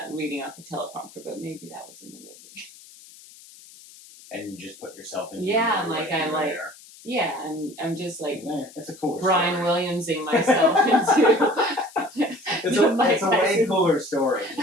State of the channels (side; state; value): left; noise; hiss, 21 dB below the sound